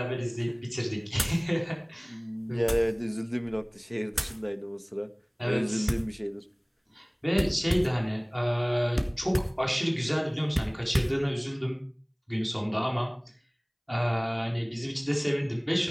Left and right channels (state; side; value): identical; both; correlation 1.00